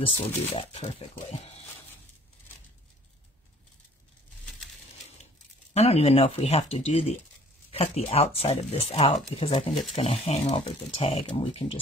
will do that perfectly. I don't even know if we have to do cut the outside of this out because I think it's going to hang over the tag and we can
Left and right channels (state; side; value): normal; both; correlation 0.54